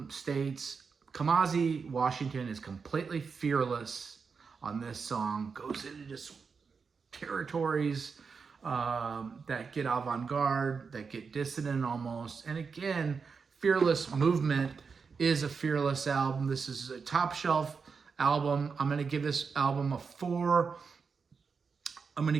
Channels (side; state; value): left; quieter; 5.4 dB